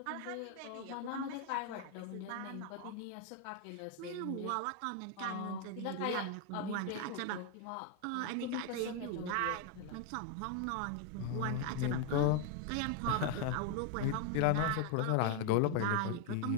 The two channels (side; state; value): both; different; correlation 0.01